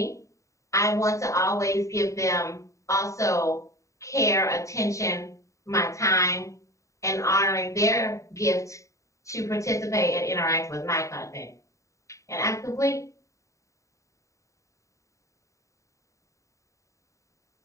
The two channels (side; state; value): right; late; 0.15 ms